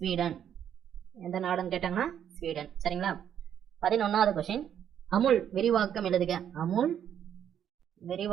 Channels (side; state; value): left; quieter; 9.4 dB